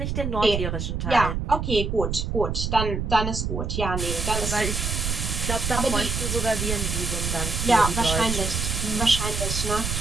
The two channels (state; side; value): noise; right; rumble, 2 dB below the sound